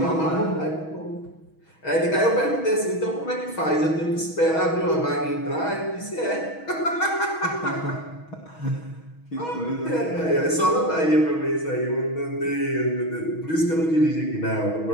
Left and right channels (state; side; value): late; right; 6.3 ms